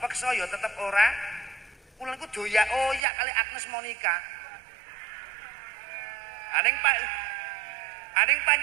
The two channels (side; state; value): left; drops out; at 3.0 s